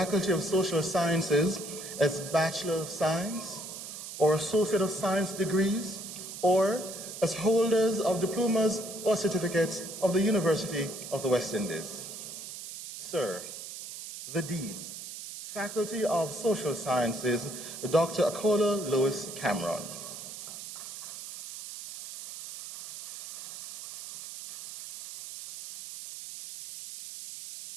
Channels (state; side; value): noise; right; hiss, 10 dB below the sound